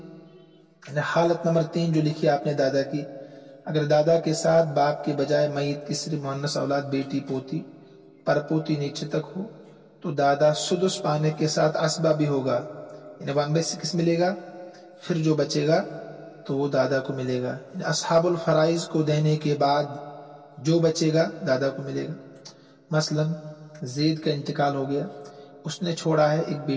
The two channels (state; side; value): identical; both; correlation 1.00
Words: हालत नंबर 3 जो लिखी आपने दादा की, अगर दादा के साथ बाप के बजाय मय्यत की सिर्फ मुअन्नस औलाद, बेटी, पोती, परपोती नीचे तक हो, तो दादा सुदुस पाने के साथ असबा भी होगा, यानी 1/6 मिलेगा, फिर जो बचेगा तो वो दादा को मिलेगा। असहाबुल फराइज को देने के बाद जो बचेगा दादा को मिलेगा। मसलन ज़ैद का इंतकाल हो गया, उसने छोड़ा है एक